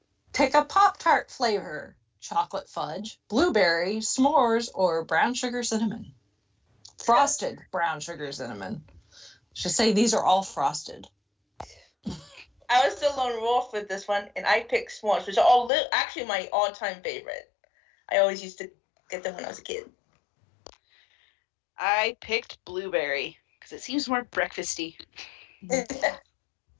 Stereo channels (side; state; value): right; drops out; at 15.7 s